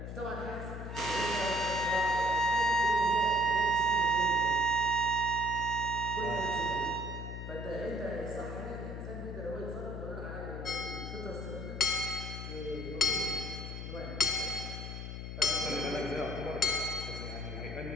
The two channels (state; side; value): noise; left; hum, 7 dB below the sound